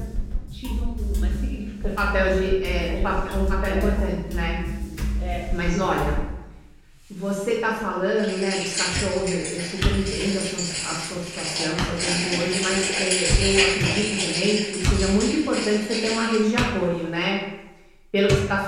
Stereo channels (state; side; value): identical; both; correlation 1.00